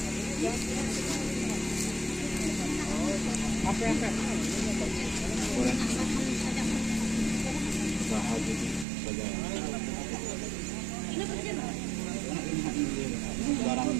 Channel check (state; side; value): drops out; left; at 8.8 s